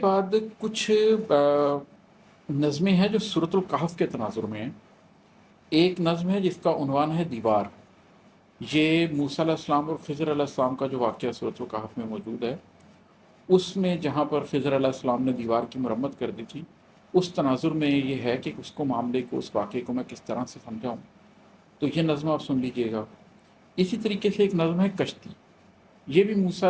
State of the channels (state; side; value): identical; both; correlation 1.00